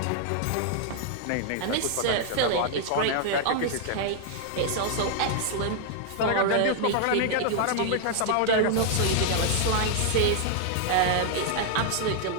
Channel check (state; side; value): different; both; correlation -0.01